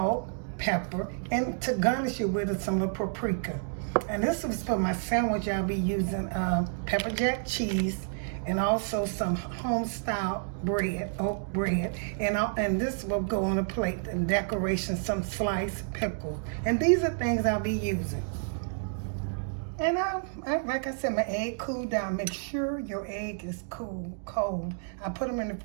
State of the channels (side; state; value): left; silent; digital silence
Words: pepper, and to garnish it with some of paprika. And this is for my sandwich. I'll be using pepper jack cheese and also some Homestyle bread, oat bread, and this will go on a plate and decoration, some sliced pickle. And these are things I'll be using. And like I said, my egg cooled down. Make sure your egg is cold. I put them in the